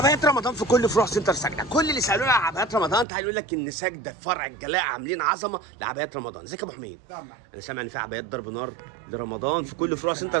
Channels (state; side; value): drops out; left; at 3.1 s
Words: رمضان في كل فروع سنتر سجده، كل اللي سالونا على عبايات رمضان تعالوا يقول لك ان سجده فرع الجلاء عاملين عظمه لعبايات رمضان. ازيك يا ابو حميد؟ انا سامع ان في عبايات ضرب نار لرمضان في كل فروع سنتر